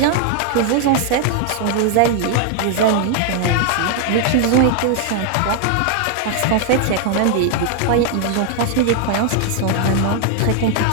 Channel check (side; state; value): both; different; correlation 0.00